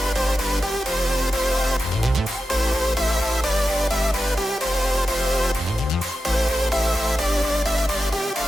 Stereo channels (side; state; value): both; normal; correlation 0.90